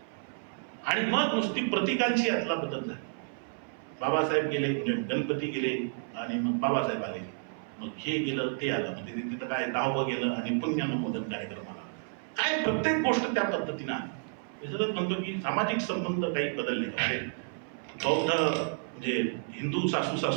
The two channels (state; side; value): silent; left; 56 dB below the other